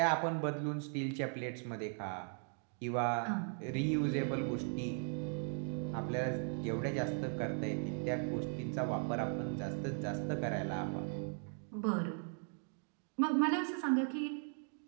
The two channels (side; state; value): left; silent; 52 dB below the other